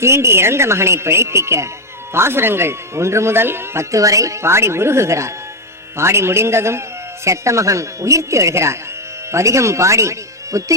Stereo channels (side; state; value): both; normal; correlation 0.07